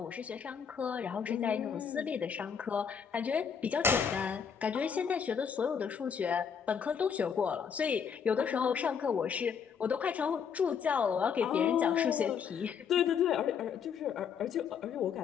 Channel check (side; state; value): right; quieter; 7.0 dB